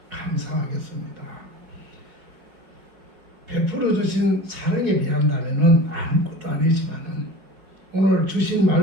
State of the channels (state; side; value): late; left; 4.7 ms